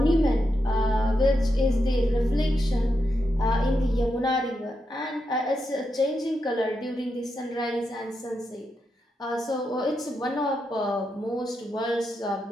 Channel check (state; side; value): normal; both; correlation 0.85